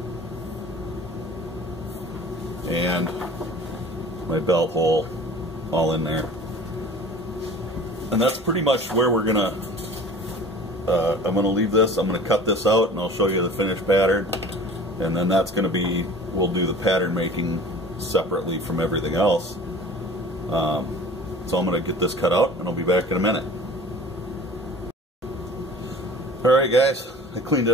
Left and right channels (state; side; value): normal; both; correlation 0.43